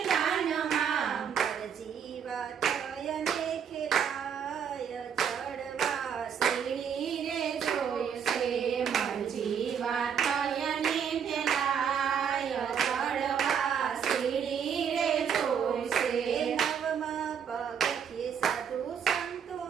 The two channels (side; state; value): left; quieter; 7.7 dB